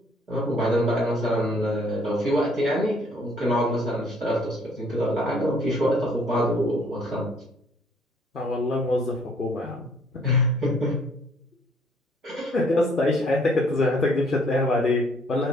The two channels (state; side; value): normal; both; correlation 0.62